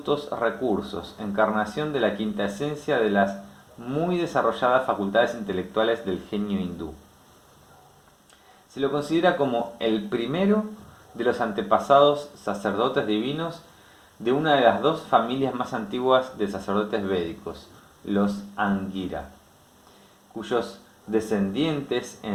recursos, encarnación de la quinta esencia de las muy desarrolladas facultades intelectuales del genio hindú. Se lo considera como el primero de los antepasados sacerdotes divinos de una de las dos familias más antiguas de sacerdotes védicos, los Angira, cuyos descendientes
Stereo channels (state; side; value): identical; both; correlation 1.00